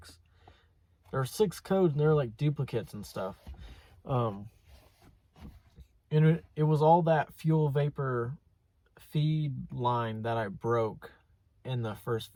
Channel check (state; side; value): identical; both; correlation 1.00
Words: There are 6 codes, and they're like duplicates and stuff. And it was all that fuel vapor feed line that I broke in the first